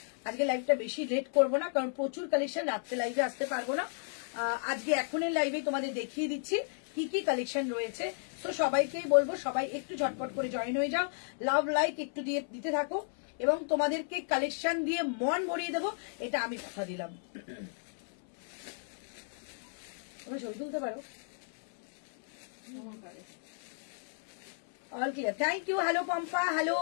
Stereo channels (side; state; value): right; silent; 56 dB below the other